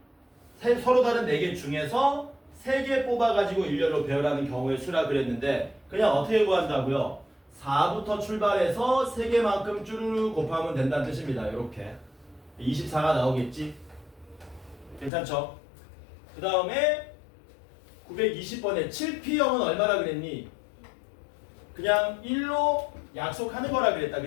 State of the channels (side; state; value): right; drops out; at 15.1 s